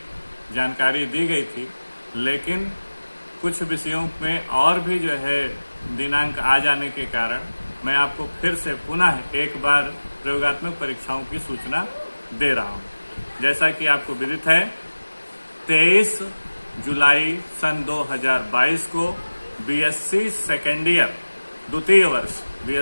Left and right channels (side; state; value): both; inverted; correlation -1.00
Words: जानकारी दी गई थी, लेकिन कुछ विषयों में और भी जो है दिनांक आ जाने के कारण मैं आपको फिर से पुनः एक बार प्रयोगात्मक परीक्षाओं की सूचना दे रहा हूं। जैसा कि आपको विदित है, 23 जुलाई सन 2022 को बीएससी सेकेंड ईयर द्वितीय